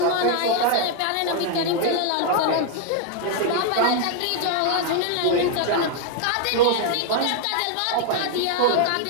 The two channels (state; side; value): different; both; correlation 0.00